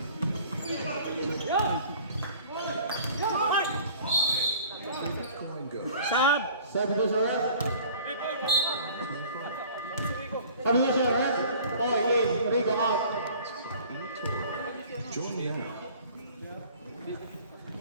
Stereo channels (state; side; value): inverted; both; correlation -0.49